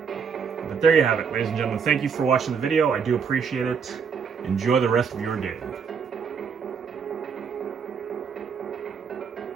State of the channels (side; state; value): left; quieter; 6.3 dB